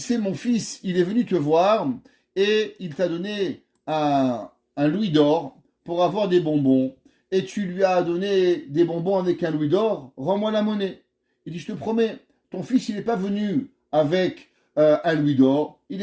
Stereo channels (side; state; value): both; identical; correlation 1.00